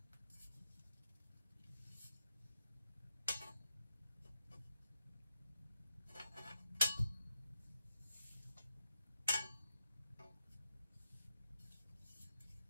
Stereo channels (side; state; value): both; inverted; correlation -0.85